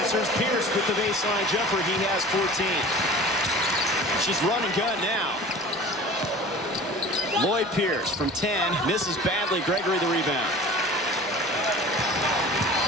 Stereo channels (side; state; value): both; normal; correlation 0.40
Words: Pierce with the baseline jumper. He has 14. She's run and gun now. Lloyd Pierce from 10. Misses badly. Gregory the rebound.